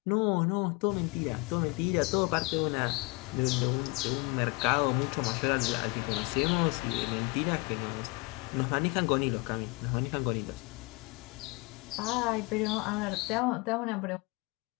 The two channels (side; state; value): right; quieter; 27.0 dB